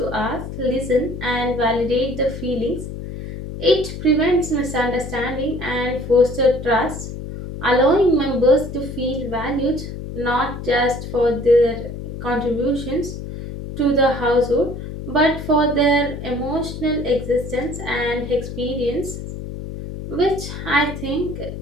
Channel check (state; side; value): noise; left; hum, 8 dB below the sound